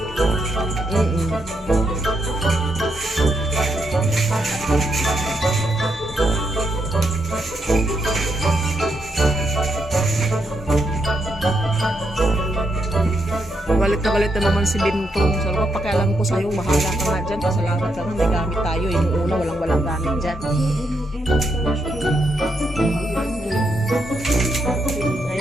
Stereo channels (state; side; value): normal; both; correlation 0.80